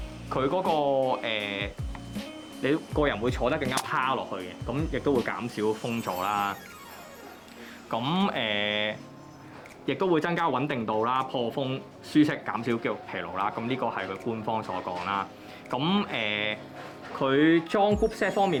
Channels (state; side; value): identical; both; correlation 1.00